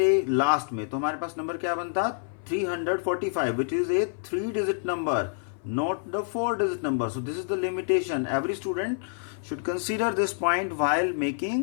लास्ट में तो हमारे पास नंबर क्या बनता 345 which is a 3-digit number, not the 4-digit number. So this is the limitation. Every student should consider this point while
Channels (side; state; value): right; silent; 57 dB below the other